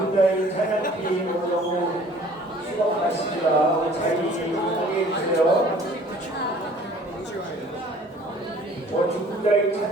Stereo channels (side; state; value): both; normal; correlation 0.52